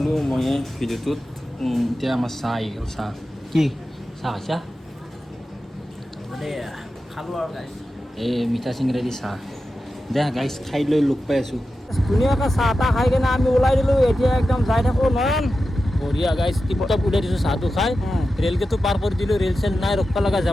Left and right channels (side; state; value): both; normal; correlation 0.92